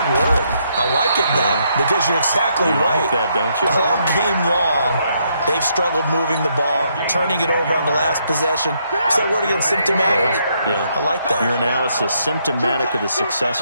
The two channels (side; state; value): both; inverted; correlation -0.74